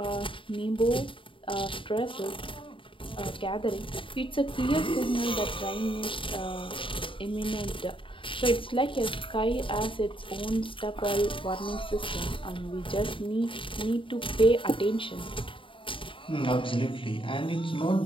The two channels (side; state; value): right; late; 0.25 ms